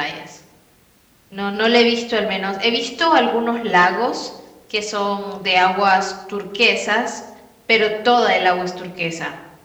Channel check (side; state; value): both; identical; correlation 1.00